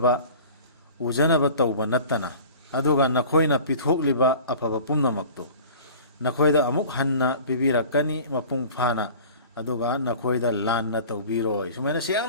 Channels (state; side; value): inverted; both; correlation -0.42